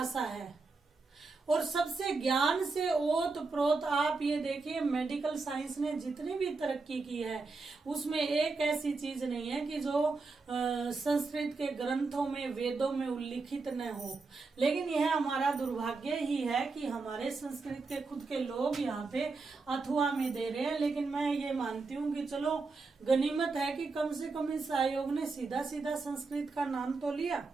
है और सबसे ज्ञान से ओत प्रोत, आप ये देखिए मेडिकल साइंस ने जितनी भी तरक्की की है उसमें एक ऐसी चीज नहीं है कि जो संस्कृत के ग्रंथों में वेदों में उल्लिखित न हो। लेकिन यह हमारा दुर्भाग्य ही है कि हमारे संस्कृत के खुद के लोग यहाँ पे अथवा में दे रहे हैं। लेकिन मैं ये मानती हूँ कि चलो गनीमत है कि कम से कम इस आयोग ने सीधा सीधा संस्कृत का नाम तो लिया।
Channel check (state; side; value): quieter; left; 4.0 dB